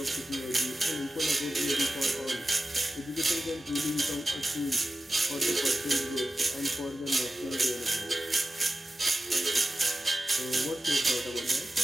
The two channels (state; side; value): normal; both; correlation 0.93